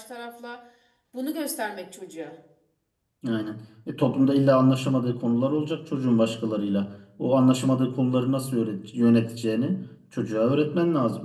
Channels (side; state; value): both; identical; correlation 1.00